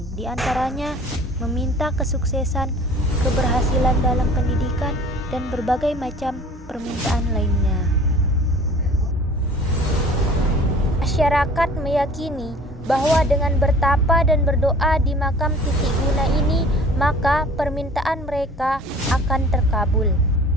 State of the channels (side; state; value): both; normal; correlation 0.47